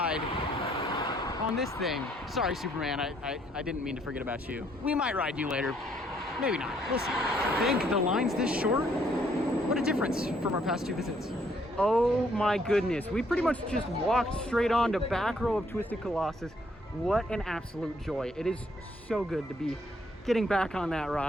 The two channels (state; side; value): normal; both; correlation 0.67